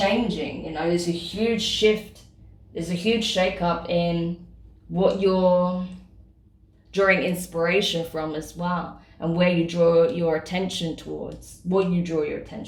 you know, there's a huge shift, there's a huge shake-up in what you're drawing inspiration from as well, and where you draw your attention towards, what you draw your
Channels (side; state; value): both; identical; correlation 1.00